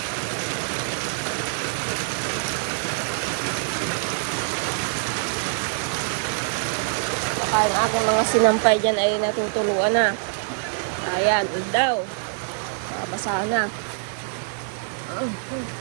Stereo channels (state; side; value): silent; left; digital silence